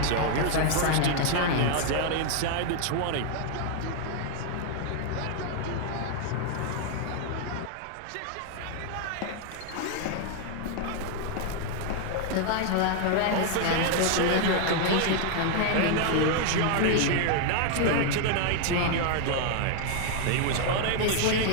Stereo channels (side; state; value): both; different; correlation 0.00